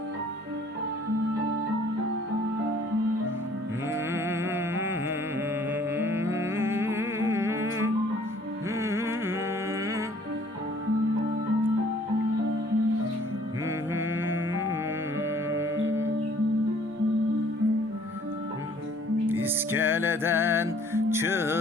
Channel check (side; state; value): both; normal; correlation 0.57